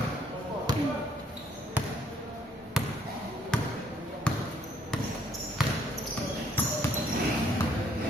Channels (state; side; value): normal; both; correlation 0.67